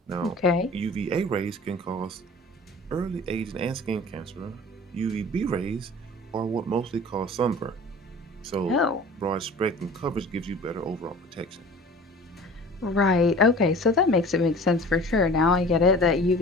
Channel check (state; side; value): normal; both; correlation 0.43